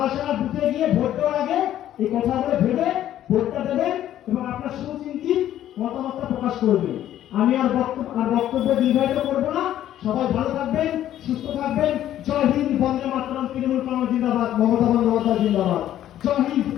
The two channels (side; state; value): right; quieter; 12.0 dB